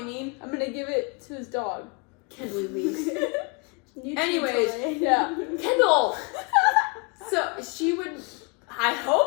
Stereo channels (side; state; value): right; quieter; 32.5 dB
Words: mean? I'm gonna give it to his dog. Kendall leaves. New Anyways, toy. Yeah. Kendall! So she would, I